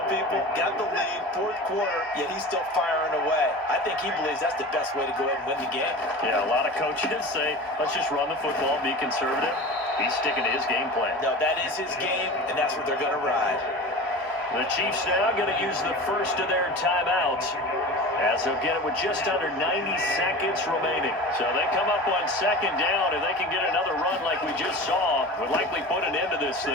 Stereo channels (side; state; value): both; normal; correlation 0.34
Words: people. Got the lead, fourth quarter, yet he's still firing away. I think he believes that's the best way to go ahead and win the game. Yeah, a lot of coaches say, let's just run the football, be conservative. He's sticking to his game plan. No, that is his game, and that's what they're going to ride. The Chiefs now going to use the first of their timeouts, as they'll get it with just under 90 seconds remaining. So they come up on second down, and they can get another run like we just saw, would likely put an end to this